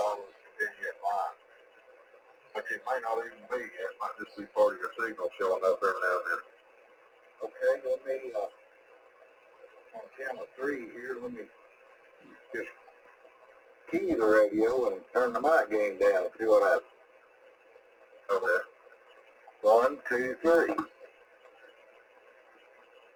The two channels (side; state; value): both; identical; correlation 1.00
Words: with continuous line. But it may not even be. It might just be part of your signal showing up every now and then. Okay, let me, on channel 3 here, let me just key the radio and turn the mic gain down and see what happens. Okay. 1, 2, 3.